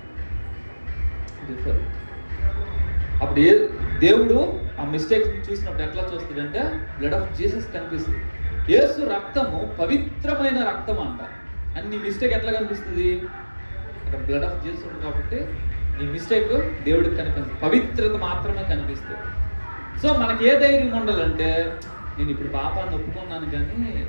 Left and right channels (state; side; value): inverted; both; correlation -1.00